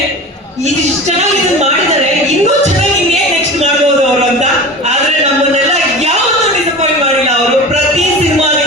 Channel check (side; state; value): both; normal; correlation 0.33